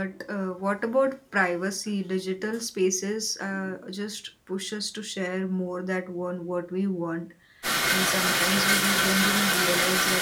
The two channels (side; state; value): both; identical; correlation 1.00